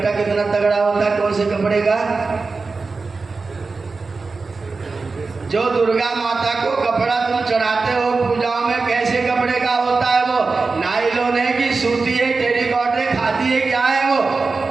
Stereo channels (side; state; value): left; quieter; 4.1 dB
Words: कितना तगड़ा होता है, कौन से कपड़े का? जो दुर्गा माता को कपड़ा तुम चढ़ाते हो पूजाओं में, कैसे कपड़े का होता है वो? नायलॉन है कि सूती है, टेरिकॉट है, खादी है, क्या है वो?